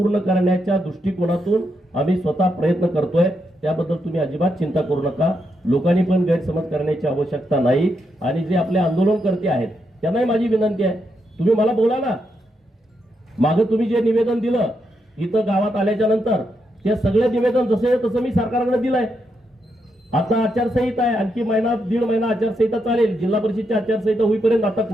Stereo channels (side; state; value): both; normal; correlation 0.82